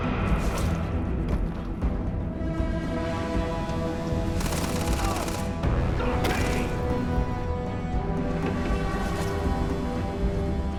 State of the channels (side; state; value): both; identical; correlation 1.00